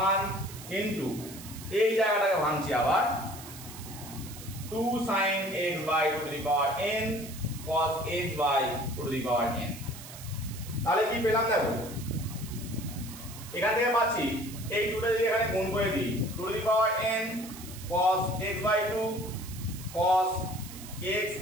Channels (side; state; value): right; noise; hiss, 14 dB below the sound